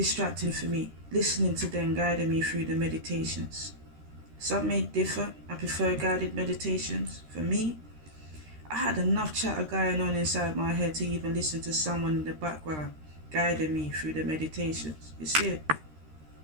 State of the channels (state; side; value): late; left; 13 ms